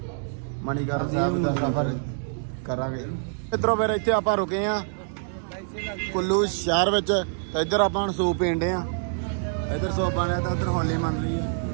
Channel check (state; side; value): silent; left; digital silence